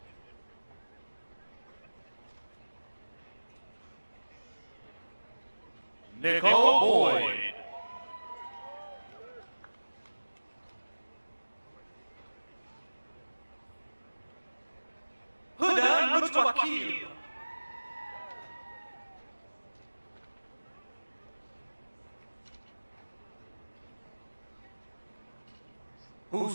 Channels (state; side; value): inverted; both; correlation -1.00